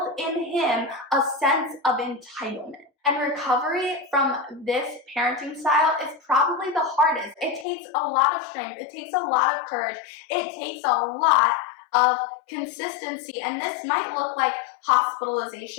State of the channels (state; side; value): drops out; right; at 7.7 s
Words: in him a sense of entitlement. And recovery from this parenting style is probably the hardest. It takes a lot of strength. It takes a lot of courage. It takes a lot of consistency, and this might look like